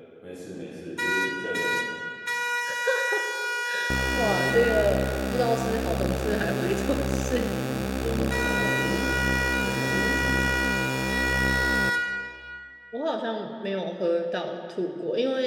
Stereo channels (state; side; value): identical; both; correlation 1.00